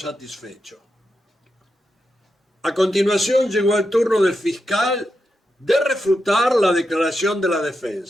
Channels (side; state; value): both; normal; correlation 0.87